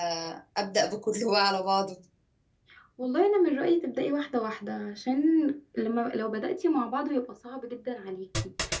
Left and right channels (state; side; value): identical; both; correlation 1.00